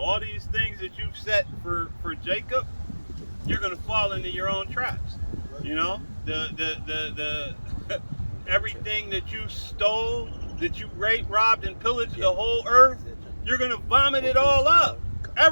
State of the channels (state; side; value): inverted; both; correlation -1.00